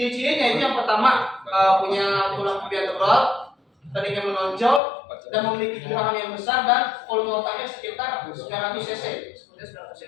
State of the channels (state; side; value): drops out; right; at 4.8 s